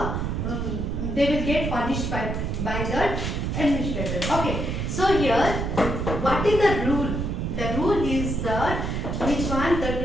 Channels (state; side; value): noise; right; rumble, 2 dB below the sound